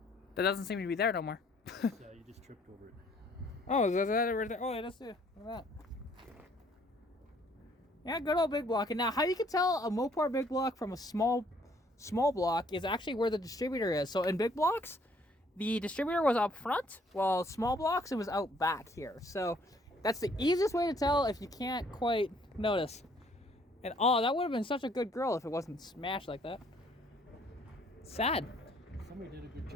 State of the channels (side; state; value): both; normal; correlation 0.62